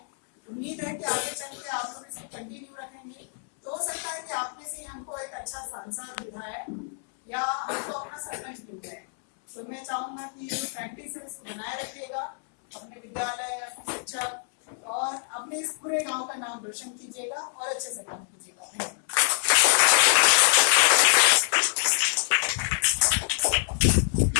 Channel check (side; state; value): right; silent; 60 dB below the other